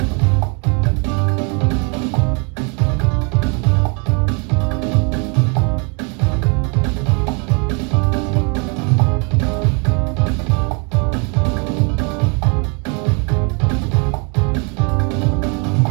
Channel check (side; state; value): left; quieter; 34.2 dB